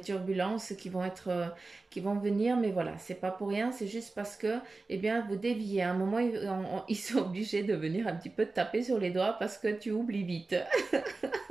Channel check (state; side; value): quieter; left; 3.6 dB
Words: turbulences qui vont venir, mais voilà, c'est pas pour rien, c'est juste parce que, eh bien, vous déviez. À un moment, ils sont obligés de venir un petit peu te taper sur les doigts parce que tu oublies vite.